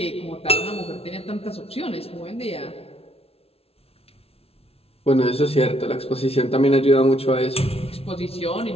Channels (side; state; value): right; late; 0.29 ms